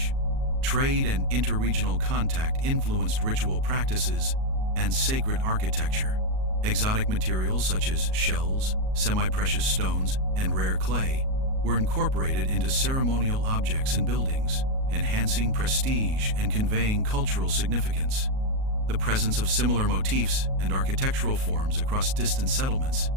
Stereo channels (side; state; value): left; late; 38 ms